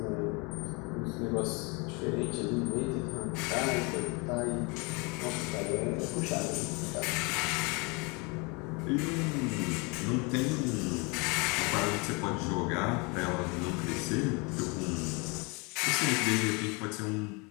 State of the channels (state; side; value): quieter; right; 29.8 dB